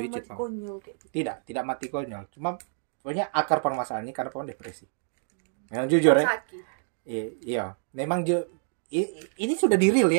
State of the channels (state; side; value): silent; left; digital silence